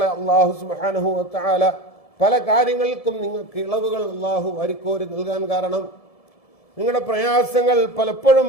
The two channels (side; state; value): right; late; 1.7 ms